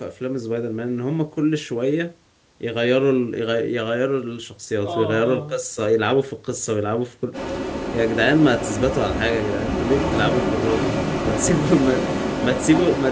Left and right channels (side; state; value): both; identical; correlation 1.00